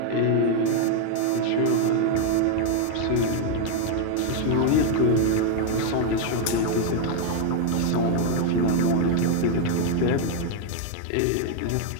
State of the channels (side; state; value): both; different; correlation 0.01